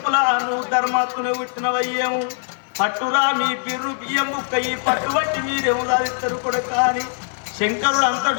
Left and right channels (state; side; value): silent; right; 56 dB below the other